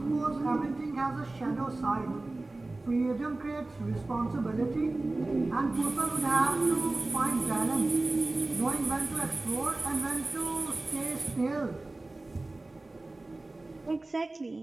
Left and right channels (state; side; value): quieter; left; 3.0 dB